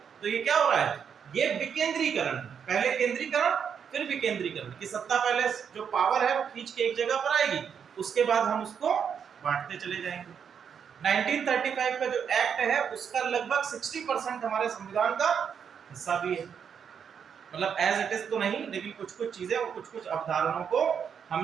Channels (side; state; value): left; quieter; 7.4 dB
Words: तो ये क्या हो रहा है, ये विकेंद्रीकरण, पहले केंद्रीकरण फिर विकेंद्रीकरण, की सत्ता पहले जो पावर है वो खींच के एक जगह पर आएगी, उसके बाद हम उसको बांटते चले जाएंगे। 1935 का जो एक्ट है उसका लगभग 60% हमारे संविधान का हिस्सा भी है, मतलब एज इट इज तो नहीं, लेकिन कुछ कुछ चीजें और कुछ कुछ अवधारणाओं को